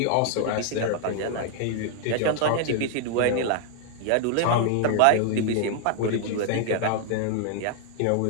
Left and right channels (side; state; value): both; different; correlation 0.00